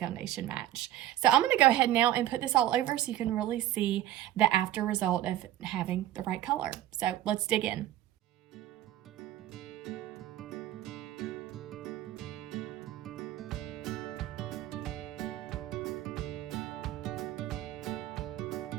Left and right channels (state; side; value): quieter; left; 13.2 dB